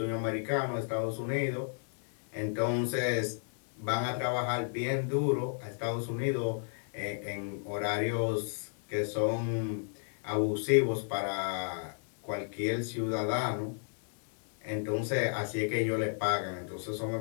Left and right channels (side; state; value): right; silent; digital silence